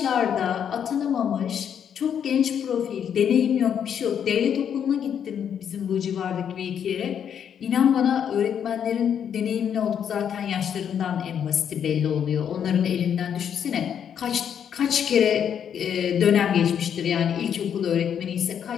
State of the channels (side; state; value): right; quieter; 8.5 dB